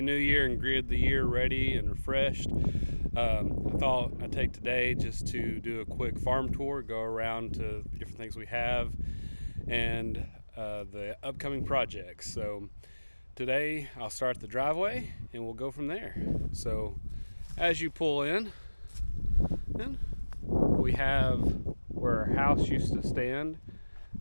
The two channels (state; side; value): inverted; both; correlation -1.00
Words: new year and greeted the year ready and refreshed. I thought I'd take today just to do a quick farm tour, go around to the different things we have and the upcoming projects. So today I'll start the driveway and we'll go from there. So as you pull in, we have where our house used to stand.